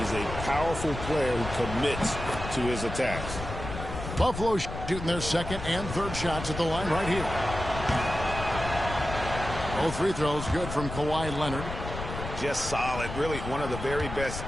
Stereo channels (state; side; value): noise; left; rumble, 8 dB below the sound